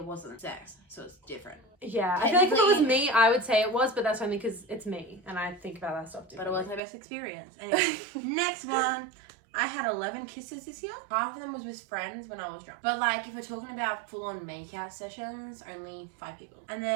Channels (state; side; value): drops out; left; at 6.8 s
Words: wasn't sex, so it's different. Yeah, I feel like if it was me, I would say it was, but that's only because it's me, and I think about that stuff differently. But it wasn't my best experience. Anyway, next one. I had 11 kisses this year. Half of them was with friends when I was drunk. But like, if we're talking about full-on make-out sessions, only 5 people. And